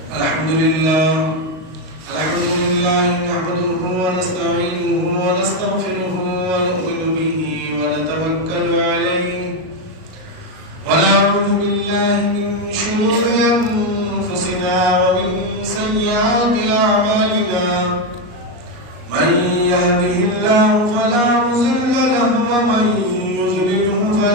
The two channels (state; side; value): late; left; 38 ms